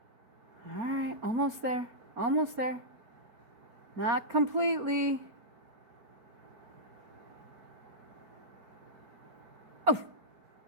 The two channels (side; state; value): left; late; 4.3 ms